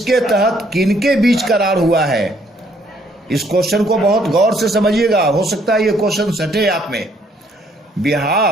तहत किनके बीच करार हुआ है? इस क्वेश्चन को बहुत गौर से समझिएगा, हो सकता है ये क्वेश्चन सटे आप में।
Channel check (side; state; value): both; normal; correlation 0.66